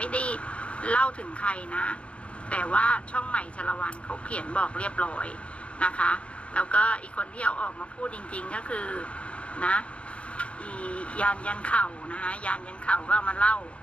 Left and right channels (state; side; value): late; right; 0.061 ms